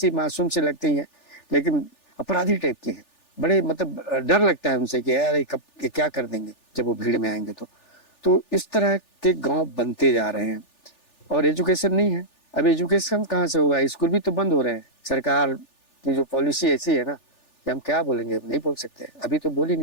मासूम से लगती है, लेकिन अपराधी टाइप के हैं। बड़े मतलब डर लगता है उनसे कि यार कब क्या कर देंगे जब वो भीड़ में आएंगे। तो तो इस तरह के गांव बनते जा रहे हैं और एजुकेशन नहीं है। अब एजुकेशन कहाँ से होगा, स्कूल भी तो बंद हो रहे हैं। सरकार की जो पॉलिसी ऐसी है ना कि हम क्या बोलेंगे, नहीं बोल सकते, अभी तो बोल ही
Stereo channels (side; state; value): right; late; 3.4 ms